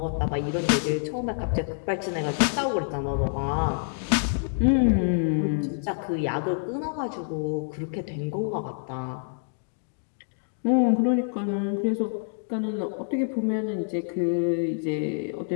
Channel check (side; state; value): right; silent; digital silence